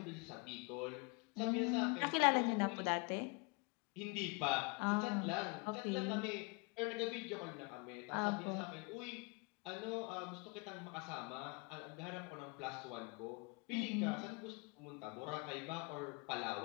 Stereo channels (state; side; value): quieter; right; 30.6 dB